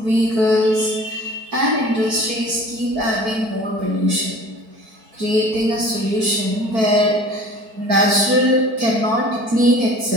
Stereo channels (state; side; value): late; left; 4.5 ms